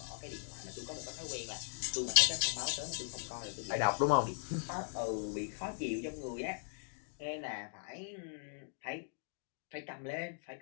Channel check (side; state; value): right; silent; digital silence